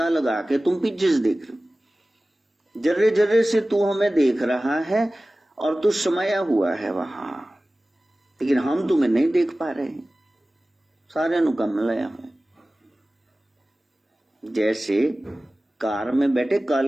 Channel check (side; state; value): both; normal; correlation 0.97